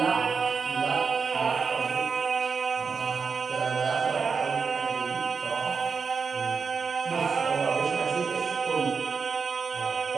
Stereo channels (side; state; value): left; quieter; 5.4 dB